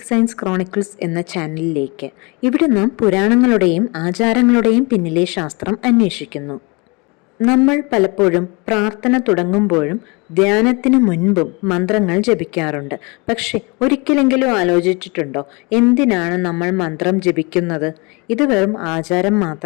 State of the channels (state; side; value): quieter; right; 28.6 dB